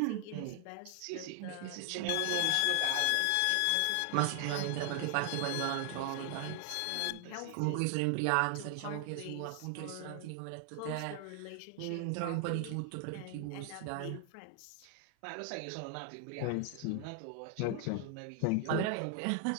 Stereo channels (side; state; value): both; different; correlation 0.00